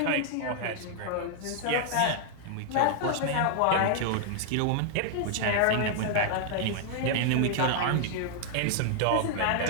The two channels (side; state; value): both; different; correlation -0.01